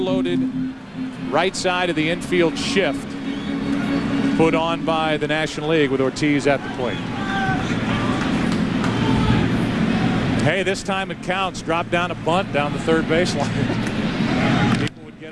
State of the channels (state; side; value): identical; both; correlation 1.00